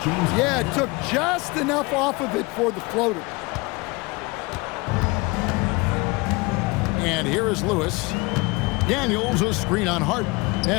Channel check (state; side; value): quieter; right; 25.3 dB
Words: Yeah, it took just enough off of it for the floater. And here is Lewis. Daniels, a screen on Harden.